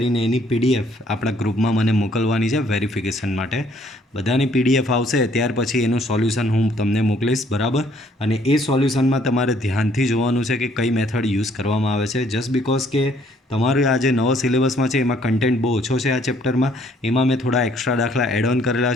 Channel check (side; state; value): both; normal; correlation 0.63